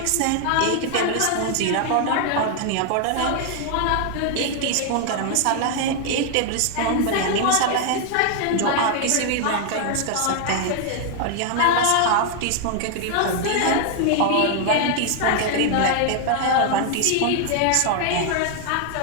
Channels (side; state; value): both; different; correlation 0.00